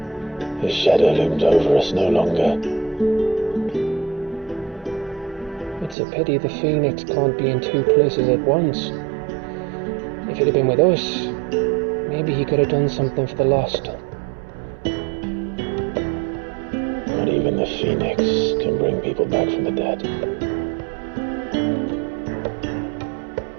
His shadow looms over us no longer. It's a pity the Phoenix can't be in two places at once. If he'd have been with us, maybe he could have done something for the lost. Not even the Phoenix can bring people back from the dead.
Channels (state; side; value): drops out; left; at 6.0 s